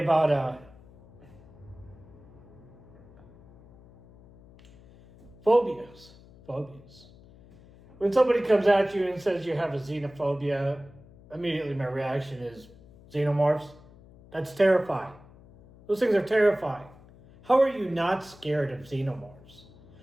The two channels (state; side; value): noise; left; hum, 23 dB below the sound